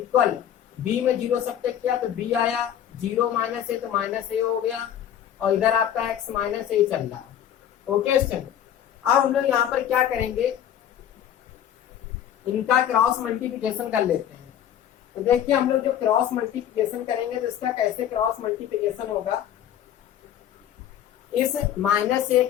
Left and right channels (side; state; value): right; quieter; 10.3 dB